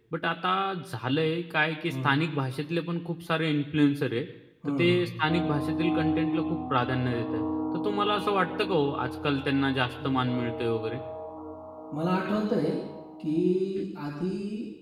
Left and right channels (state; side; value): identical; both; correlation 1.00